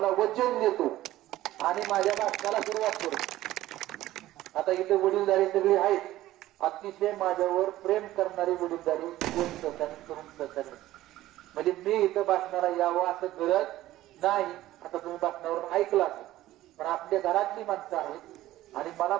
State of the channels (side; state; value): left; quieter; 15.3 dB